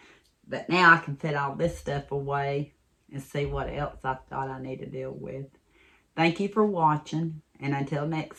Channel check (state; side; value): identical; both; correlation 1.00